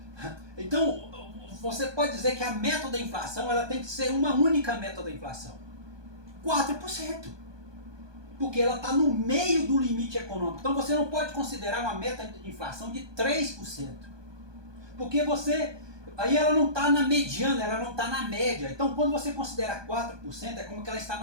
você pode dizer que a meta da inflação ela tem que ser uma única meta da inflação. 4%. Porque ela está no meio do limite econômico. Então você não pode considerar uma meta de inflação de 3%. Porque aí ela não está na mediana, ela não está na média. Então quando você considera 4%, é como que ela está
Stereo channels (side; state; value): left; late; 1.2 ms